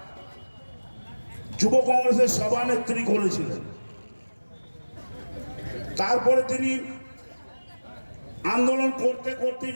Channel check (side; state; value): both; inverted; correlation -1.00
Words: যুব কংগ্রেসের সভানেত্রী করেছিলেন। তারপরে তিনি আন্দোলন করতে করতে